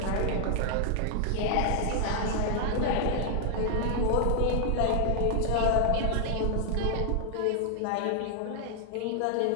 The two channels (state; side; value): different; both; correlation 0.00